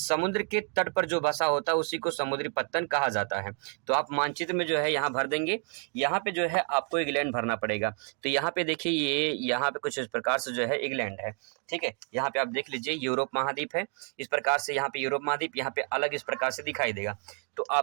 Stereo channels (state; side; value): quieter; left; 37.9 dB